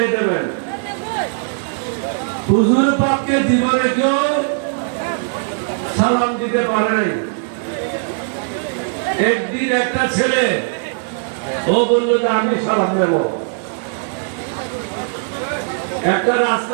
দেবেন। হুজুর পাককে জীবনে কেউ সালাম দিতে পারে নাই। একদিন একটা ছেলে ও বললো যে আমি সালাম দেব। একটা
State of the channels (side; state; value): left; silent; digital silence